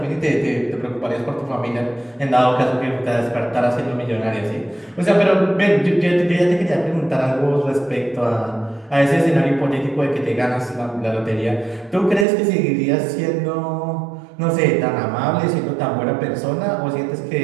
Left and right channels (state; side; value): drops out; left; at 12.2 s